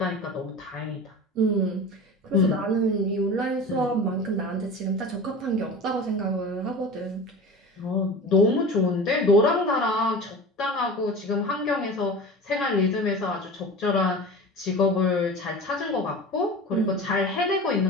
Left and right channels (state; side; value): normal; both; correlation 0.34